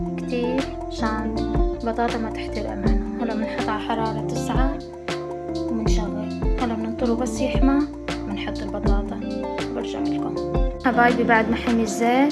كتير عشان البطاطا ما تحترق معنا. هلا بنحط على حرارة 9 وبنشغل. هلا بننطره بس يحمى بنحط البطاطا. برجع لكم حبايبي بعد ما حمي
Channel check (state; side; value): identical; both; correlation 1.00